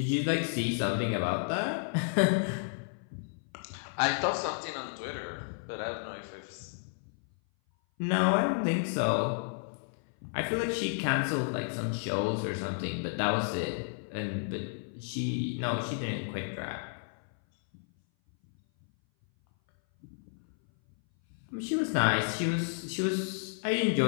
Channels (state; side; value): silent; right; 56 dB below the other